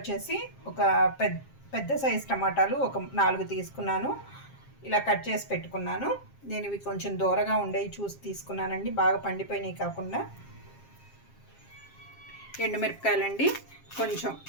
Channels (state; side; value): late; right; 7.4 ms